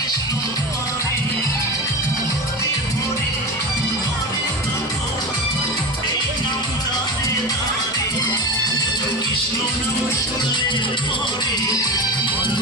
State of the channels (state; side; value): normal; both; correlation 0.25